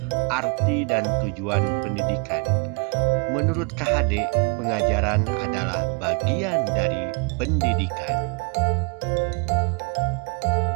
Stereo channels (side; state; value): left; quieter; 34.5 dB